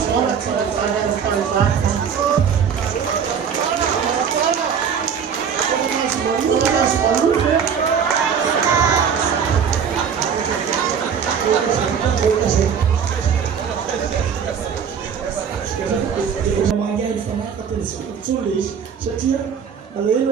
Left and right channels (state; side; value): quieter; left; 7.2 dB